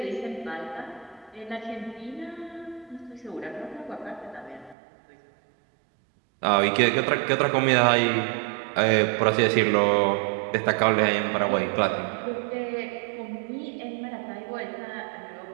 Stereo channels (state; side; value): drops out; left; at 4.8 s